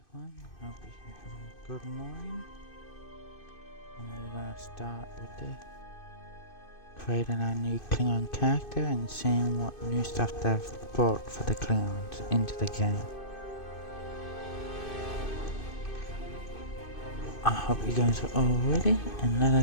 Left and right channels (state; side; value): late; right; 2.5 ms